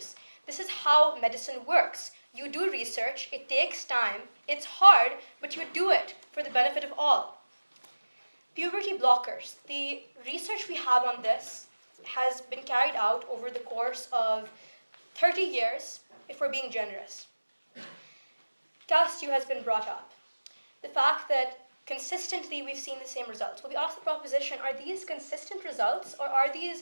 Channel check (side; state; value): both; inverted; correlation -1.00